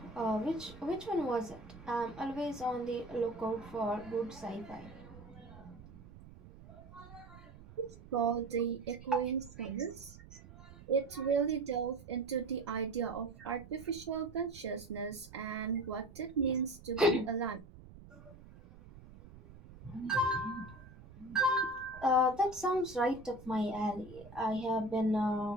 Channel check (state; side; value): noise; right; rumble, 18 dB below the sound